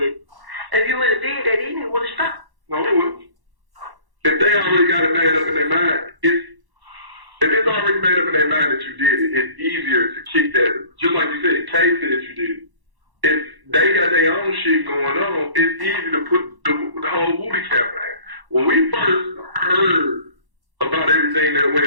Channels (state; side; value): late; left; 1.1 ms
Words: it. If you would have did that, he didn't would have stopped. No, it wouldn't. If they already got it made up in their mind, if it's already made up in their mind that you did it, it's easier to kick that. Just like you said, Kay said you did it. If they got their own shit going on, it's easy to put the whole booty cap in. When we first heard about everything that